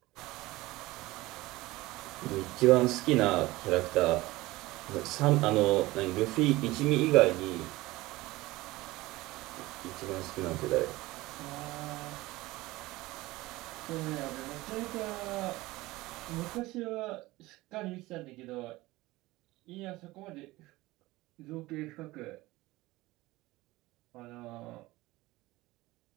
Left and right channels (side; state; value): left; quieter; 19.4 dB